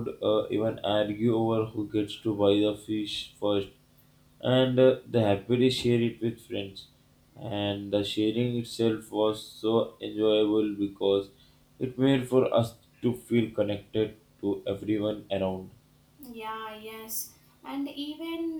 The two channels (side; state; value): both; identical; correlation 1.00